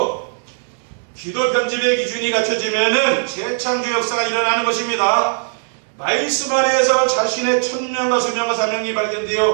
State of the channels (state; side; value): silent; left; digital silence